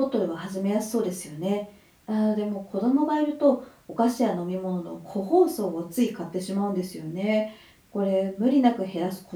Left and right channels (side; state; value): both; identical; correlation 1.00